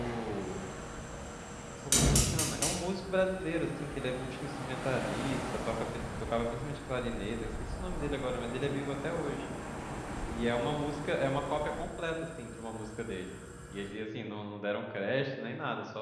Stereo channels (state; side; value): identical; both; correlation 1.00